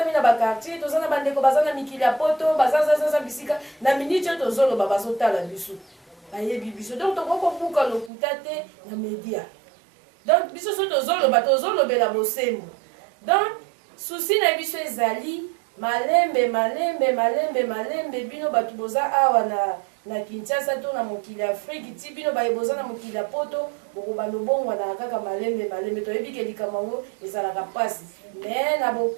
na bakartier toza na bandeko baza na mikili ya poto bazazazaza bisika na miniti oyo tozoloba bazotala biso bayebi biso donc tokokobuka lokuta te na media donc biso so tozolobela bosembo donc susi na biso ezali malembe bino bato boza awa na Kinshasa to na mokili ya Afrique ti bino boza na mokili ya poto bokobanda obongwana kaka malembe toyebi ke likambo yango ezalaka pasi me na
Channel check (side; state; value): left; drops out; at 8.1 s